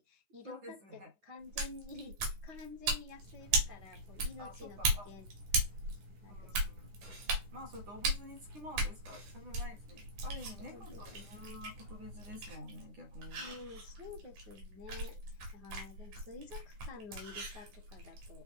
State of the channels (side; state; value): left; late; 9.9 ms